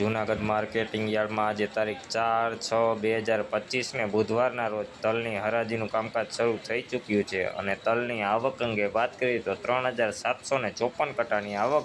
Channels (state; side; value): identical; both; correlation 1.00